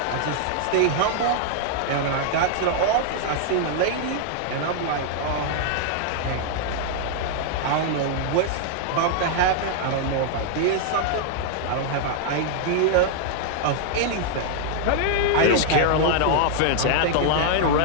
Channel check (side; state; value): both; different; correlation -0.01